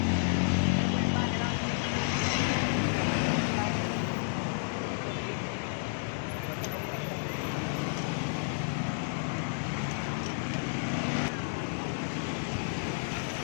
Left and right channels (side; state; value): right; silent; digital silence